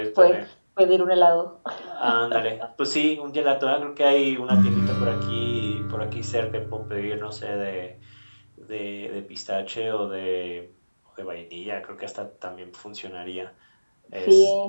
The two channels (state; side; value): inverted; both; correlation -1.00